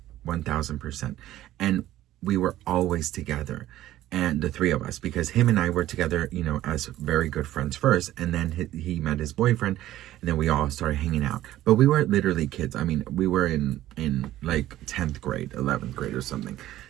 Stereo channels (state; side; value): quieter; left; 14.2 dB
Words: 1000%. And we were always together. and the three of us, because him and I were together, you know, as very good friends first, and then he met his boyfriend, and then we all started hanging out. But we were literally kids. I mean, we were in like 10th grade, 11th grade or something.